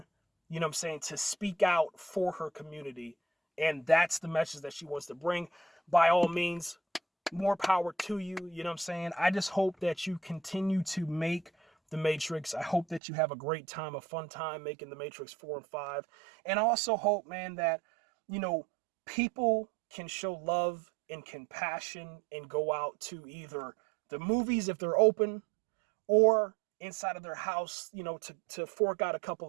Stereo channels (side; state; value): left; drops out; at 13.0 s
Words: you know what I'm saying, to speak out for her community. And that's the message that she wants to bring. By all means, more power to you. You know what I'm saying? I just hope that you continue to make The Matrix. I hope that you have a great time, a fun time making The Matrix 4 and 5. And I also hope, man, that, you know, people can show love and compassion and go out to either the movies if they're open, or inside of their house, you know, to fork out a couple